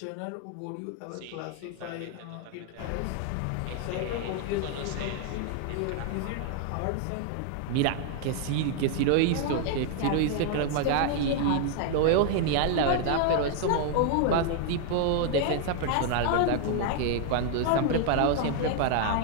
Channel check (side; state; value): both; different; correlation 0.00